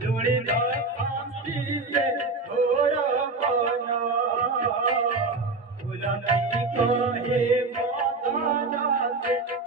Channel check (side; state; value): left; quieter; 3.6 dB